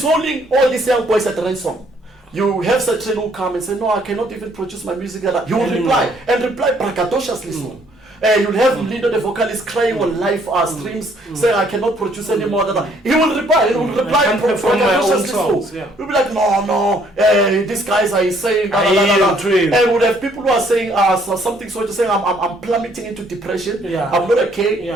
holding all these young boys at ransom. You have certain who come and say, no, I cannot even produce my music. You will reply braggadociously so. You'll have Lindo, the vocalist, crying on live streams, saying, I cannot produce anymore. He will reply. He will reply so. We'll be like, no, these guys are saying, and we'll have people who are saying something so to say, I'm plummeting into depression. I'm not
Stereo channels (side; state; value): both; normal; correlation 0.65